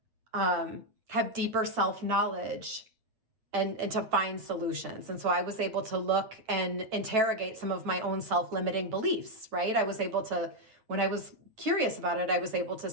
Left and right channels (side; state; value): left; late; 9.2 ms